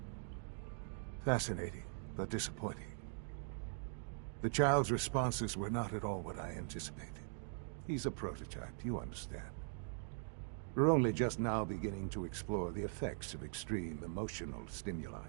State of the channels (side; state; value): left; silent; digital silence